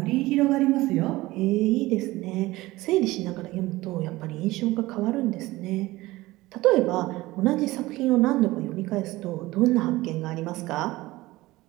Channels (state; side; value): quieter; left; 19.0 dB